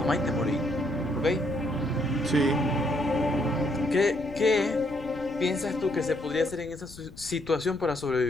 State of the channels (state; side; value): noise; left; rumble, 18 dB below the sound